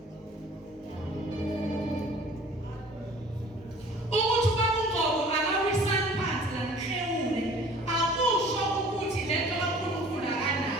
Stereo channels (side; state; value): both; normal; correlation 0.49